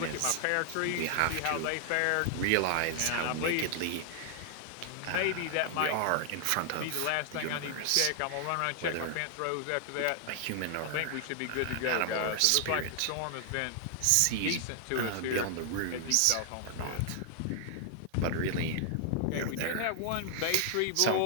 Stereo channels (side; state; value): both; different; correlation 0.00